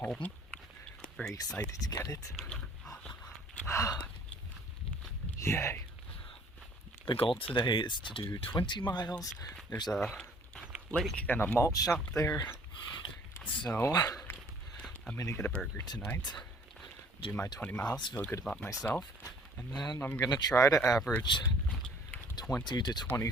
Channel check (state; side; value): normal; both; correlation 0.55